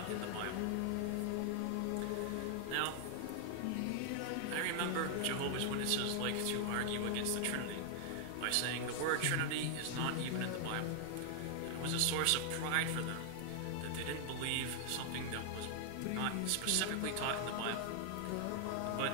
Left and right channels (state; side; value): different; both; correlation 0.00